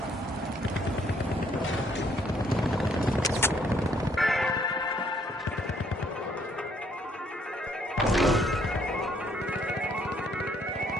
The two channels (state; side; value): normal; both; correlation 0.67